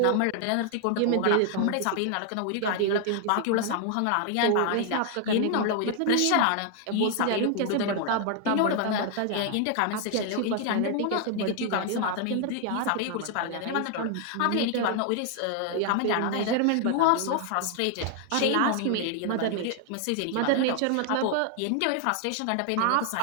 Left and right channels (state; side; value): different; both; correlation 0.00